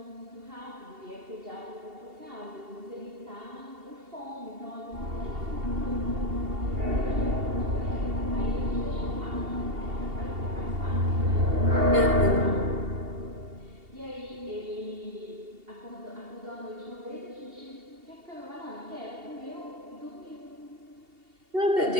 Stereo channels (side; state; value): left; late; 2.8 ms